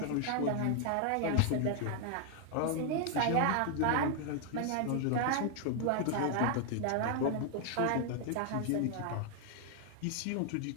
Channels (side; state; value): both; different; correlation 0.00